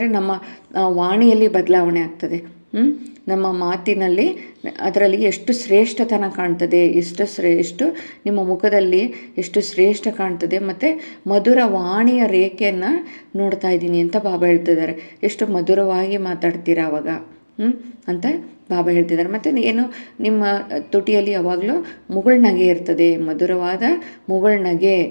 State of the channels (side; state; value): both; inverted; correlation -1.00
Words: ನಮ್ಮ ವಾಣಿಯಲ್ಲಿ ಬದಲಾವಣೆ ಆಗ್ತದೆ. ನಮ್ಮ ಮಾತಿನಲ್ಲಿ ಅದರಲ್ಲಿ ಎಷ್ಟು ಶ್ರೇಷ್ಠತನ ಕಾಣ್ತದೆ, ಎಷ್ಟು ನಿಮ್ಮ ಮುಖದಲ್ಲಿ ಎಷ್ಟು ಶ್ರೇಷ್ಠ ಕಾಣ್ತದೆ. ಮತ್ತು ಮಧುರ ವಾಣಿಯ ರೇಖೆಯನ್ನು ನೋಡ್ತಾ ಇದ್ದೀನಿ ಅಂತ ಬಾಬಾ ಹೇಳ್ತಿದ್ದಾರೆ. ಎಷ್ಟು ಮಧುರವಾಗಿ ಮಾತಾಡ್ತೀರಾ ಅವಾಗ ಅಂತ ಬಾಬಾ ಹೇಳ್ತಿದ್ದಾರೆ. ಮತ್ತು ಏನು, ನಿಮ್ಮ ತುಟಿಯಲ್ಲಿ ಯಾವಾಗಲೂ ಮುಗುಳ್ನಗೆ ಇರ್ತದೆ, ಮಧುರವಾದ